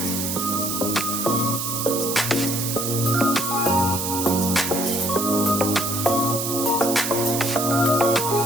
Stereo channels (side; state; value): right; noise; hiss, 2 dB below the sound